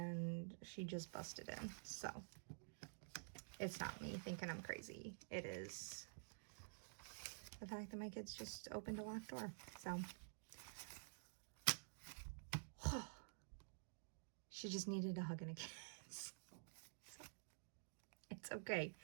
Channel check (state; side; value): silent; left; digital silence